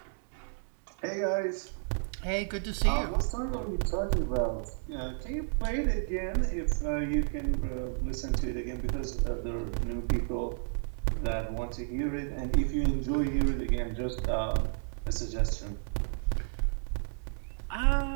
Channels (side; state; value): left; silent; digital silence